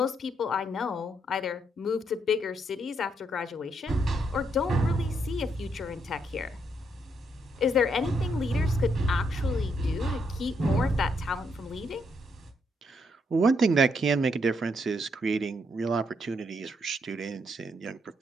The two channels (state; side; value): normal; both; correlation 0.76